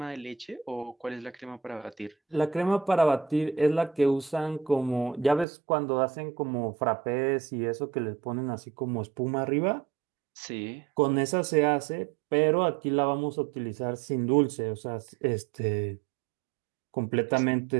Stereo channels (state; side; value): drops out; left; at 5.5 s